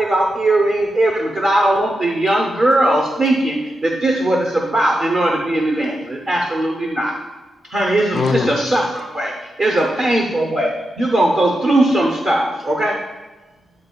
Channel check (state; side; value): normal; both; correlation 0.87